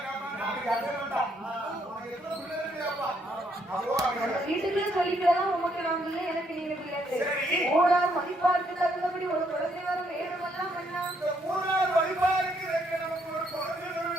வீட்டுக்குள்ளே சொல்லிக்கலாம் உமக்கு நாங்க இல்லை எனக்கு நீங்க பிள்ளை ஓடா மதிப்பாருக்கு தகுந்தபடி ஒரு குழந்தை வரும் வேணுமெல்லாம்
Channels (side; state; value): both; normal; correlation 0.72